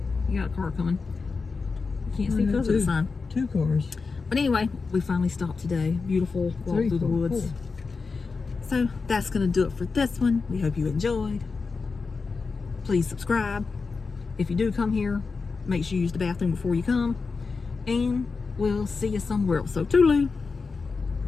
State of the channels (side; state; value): right; quieter; 4.6 dB